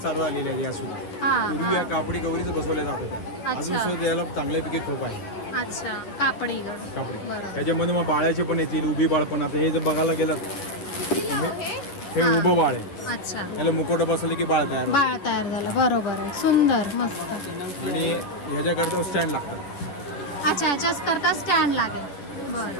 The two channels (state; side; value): late; right; 10 ms